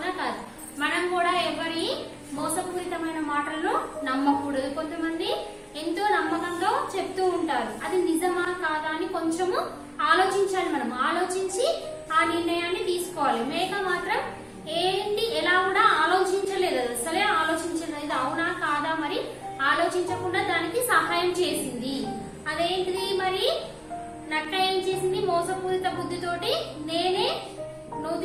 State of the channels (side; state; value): both; identical; correlation 1.00